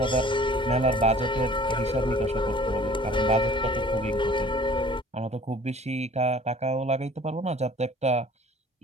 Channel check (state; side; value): normal; both; correlation 0.49